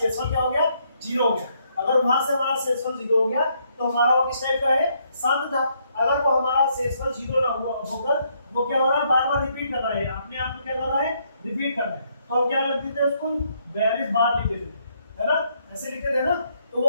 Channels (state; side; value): inverted; both; correlation -0.72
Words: क्या हो गया? 0 हो गया। अगर वहां से हमारा शेषफल 0 हो गया तो हमारा वो किस टाइप का है? शांत था। अगर वो हमारा शेषफल 0 ना हुआ होकर वो क्या हो रहा है? बार बार रिपीट कर रहा है, अपने आप में क्या कर रहा है? रिपीट कर रहा है। तो हम क्या लिख देते हैं उसको? 42 बार लिख देते है ना, ऐसे लिखते थे ना। तो